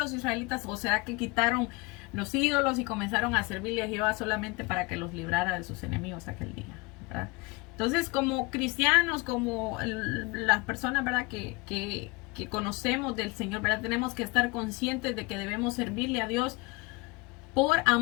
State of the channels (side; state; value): right; quieter; 25.4 dB